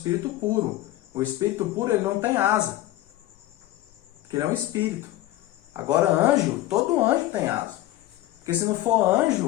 puro. O espírito puro, ele não tem asa, porque ele é um espírito. Agora, anjo, todo anjo tem asa. Porque se não for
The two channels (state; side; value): quieter; right; 15.4 dB